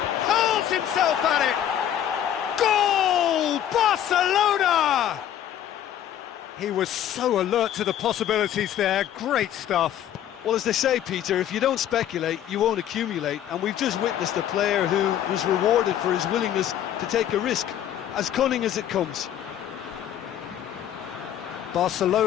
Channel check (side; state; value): right; quieter; 10.8 dB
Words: Hurls himself at it! Goal! Barcelona! He was so alert to the possibilities there. Great stuff. Well, as they say, Peter, if you don't speculate, you won't accumulate. And we've just witnessed a player who was rewarded for his willingness to take a risk, as cunning as it comes.